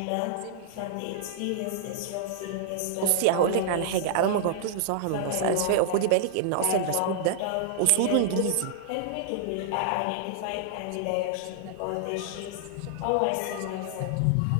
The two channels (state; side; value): different; both; correlation -0.01